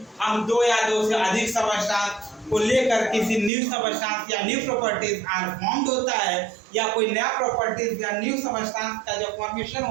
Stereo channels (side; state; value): left; drops out; at 3.5 s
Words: हम 2 या 2 से अधिक सबस्टेंस को लेकर किसी न्यू सबस्टेंस या न्यू प्रॉपर्टीज आर फॉर्म्ड होता है, या कोई नया प्रॉपर्टीज या न्यू सबस्टेंस का जो फॉर्मेशन